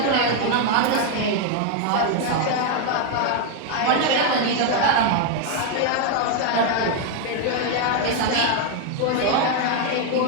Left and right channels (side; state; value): both; different; correlation 0.01